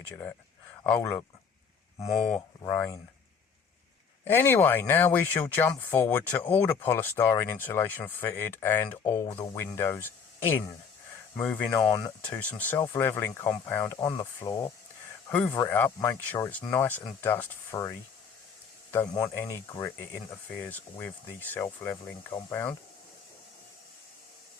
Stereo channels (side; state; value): right; quieter; 6.2 dB